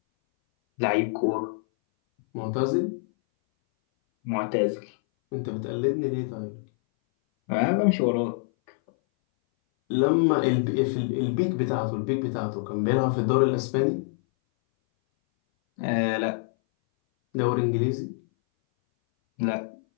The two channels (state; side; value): silent; right; 59 dB below the other